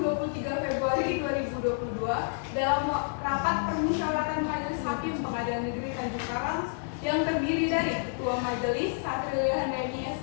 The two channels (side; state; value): right; silent; 58 dB below the other